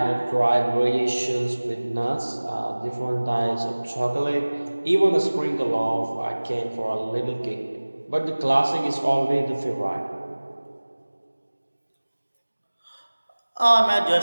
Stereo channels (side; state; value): both; inverted; correlation -1.00